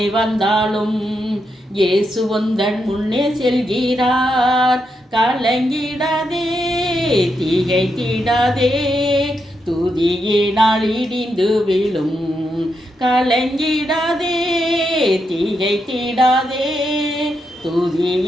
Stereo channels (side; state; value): both; normal; correlation 0.83